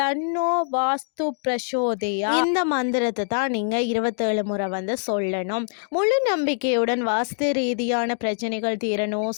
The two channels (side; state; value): right; silent; digital silence